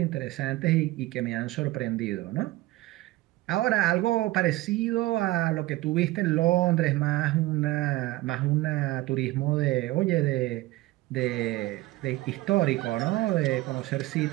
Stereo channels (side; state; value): left; quieter; 18.2 dB